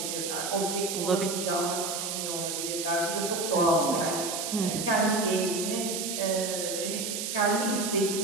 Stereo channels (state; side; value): noise; right; hiss, 3 dB below the sound